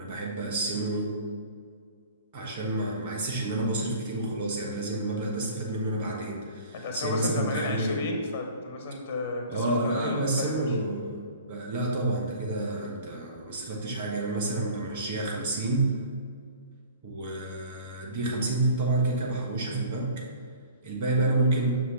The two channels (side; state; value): both; inverted; correlation -0.45